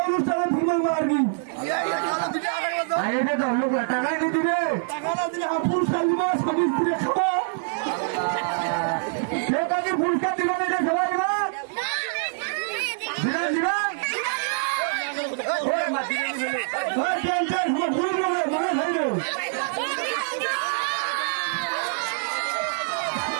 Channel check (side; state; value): left; silent; digital silence